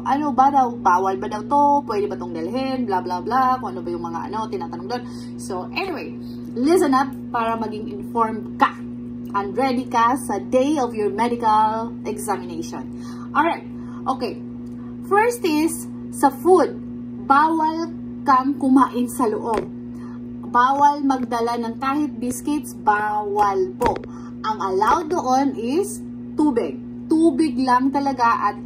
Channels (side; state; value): both; identical; correlation 1.00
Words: ba daw, bawal ba daw to, pwede ba tong dalhin, blah blah blah, kung ano ba yung mga tinatanong doon. So, anyway, listen up para maging informed ka and ready ka sa day of your medical examination. Alright, okay. First is, sa food, bawal kang kumain sa loob. Bawal magdala ng kahit biscuits, bawal po. Ang allowed doon is tubig. Tubig lang talaga